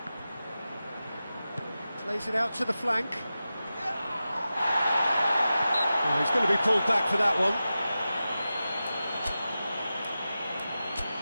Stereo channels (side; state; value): both; inverted; correlation -0.93